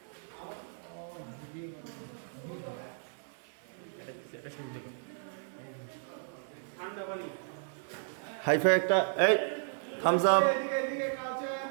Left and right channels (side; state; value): left; silent; digital silence